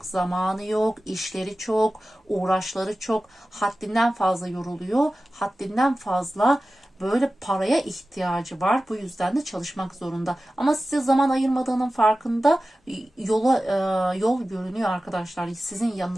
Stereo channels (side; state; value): both; normal; correlation 0.95